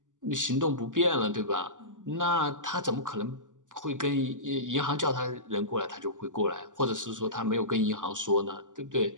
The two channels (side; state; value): left; late; 0.87 ms